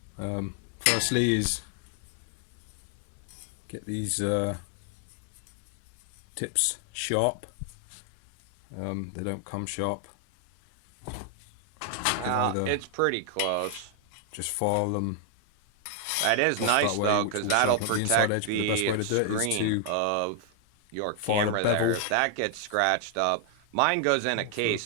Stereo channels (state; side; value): different; both; correlation 0.00